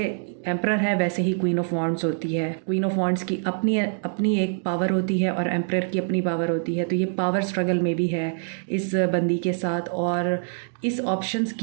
एम्परर है वैसे ही क्वीन ऑफ वॉन्ड्स होती है। क्वीन ऑफ वॉन्ड्स की अपनी अपनी एक पावर होती है, और एम्परर की अपनी पावर होती है। तो ये पावर स्ट्रगल में भी है इस बंदी के साथ, और इस ऑप्शंस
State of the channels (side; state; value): left; silent; digital silence